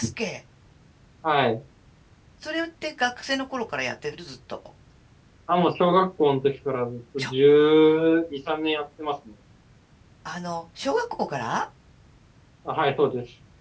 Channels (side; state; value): both; identical; correlation 1.00